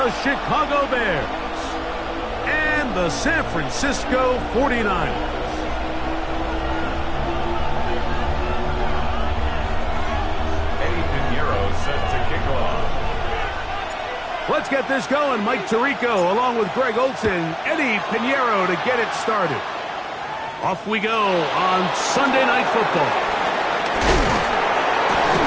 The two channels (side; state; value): both; identical; correlation 1.00